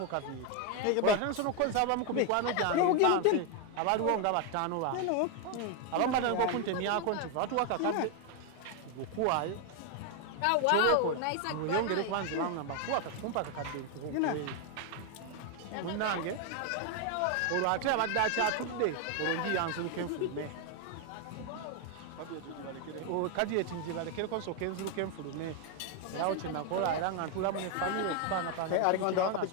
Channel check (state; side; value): different; both; correlation 0.01